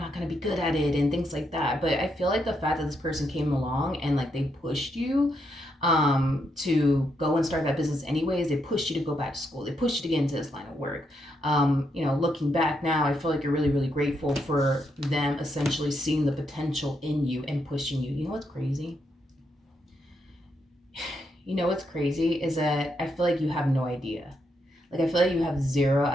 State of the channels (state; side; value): normal; both; correlation 0.79